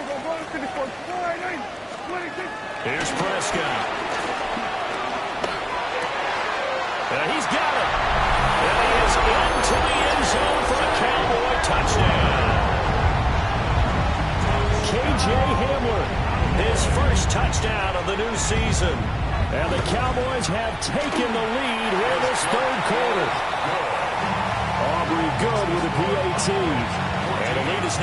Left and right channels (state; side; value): identical; both; correlation 1.00